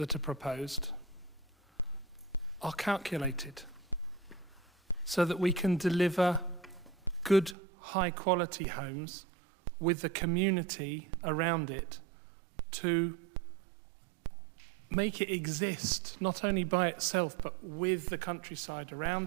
are proposed are calculated so that we can deliver good, high-quality homes with the community around it to make it exist, not only by itself, but with the countryside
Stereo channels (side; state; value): left; drops out; at 7.6 s